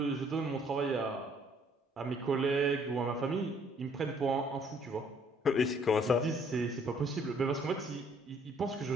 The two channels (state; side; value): normal; both; correlation 0.62